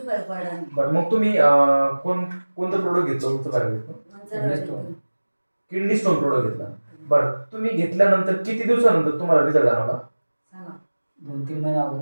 फरक पडला नाही. बरं, मग तुम्ही कोणतं प्रोडक्ट घेतलं तुमचं काय घेतलं? किडनी स्टोन प्रोडक्ट घेतला. बरं, तुम्ही घेतल्यानंतर किती दिवसानंतर तुम्हाला रिझल्ट जाणवला? सांगा. 2-3 महिने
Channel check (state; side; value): inverted; both; correlation -1.00